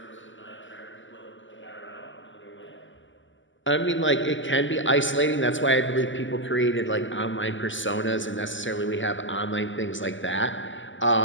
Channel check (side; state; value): right; late; 0.55 ms